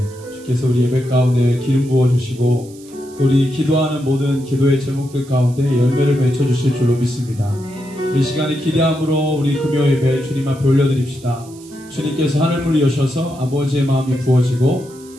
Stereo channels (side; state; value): right; noise; hiss, 23 dB below the sound